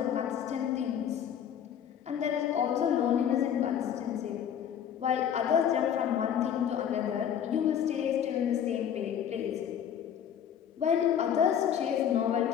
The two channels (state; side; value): quieter; right; 9.0 dB